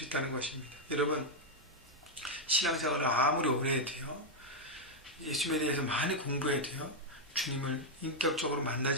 있다는 것입니다. 여러분, 신앙생활을 아무리 오래 해도요, 예수님에 대해서 많이 공부해도요, 주님을 인격적으로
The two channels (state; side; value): normal; both; correlation 0.00